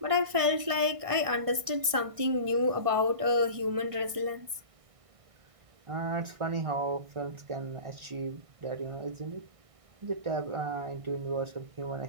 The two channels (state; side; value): late; left; 1.6 ms